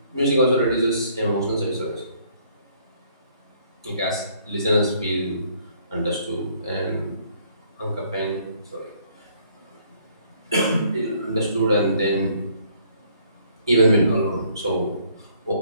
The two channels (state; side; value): inverted; both; correlation -0.63